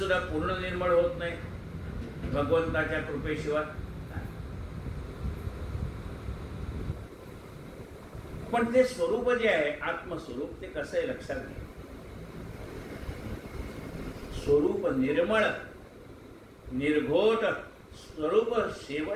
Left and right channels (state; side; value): identical; both; correlation 1.00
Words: पूर्ण निर्मळ होत नाही भगवंताच्या कृपेशिवाय. पण ते स्वरूप जे आहे आत्मस्वरूप, ते कसं आहे लक्षात घ्या. स्वरूप निर्मळ, निर्घोट स्वरूप,